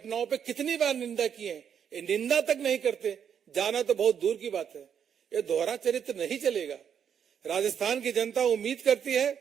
पे कितनी बार निंदा की है। ये निंदा तक नहीं करते, जाना तो बहुत दूर की बात है। ये दोहरा चरित्र नहीं चलेगा। राजस्थान की जनता उम्मीद करती है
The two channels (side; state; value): left; quieter; 8.1 dB